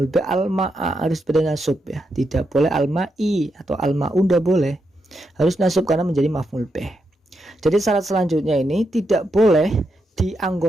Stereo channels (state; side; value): normal; both; correlation 0.83